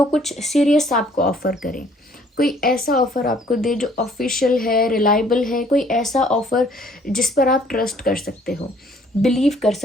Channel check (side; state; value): both; normal; correlation 0.60